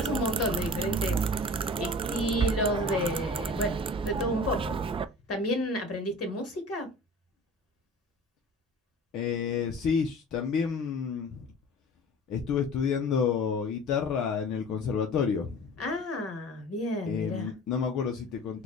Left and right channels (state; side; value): normal; both; correlation 0.41